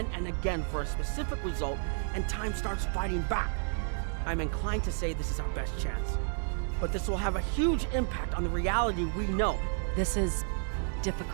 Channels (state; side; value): silent; left; 57 dB below the other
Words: and again for a specific result, and time starts fighting back. I'm inclined to say this is our best chance. But this will have a huge impact on the reality we know. This is